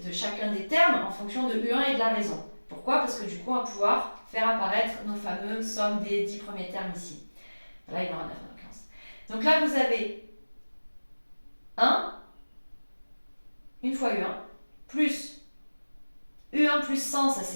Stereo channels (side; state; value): both; inverted; correlation -1.00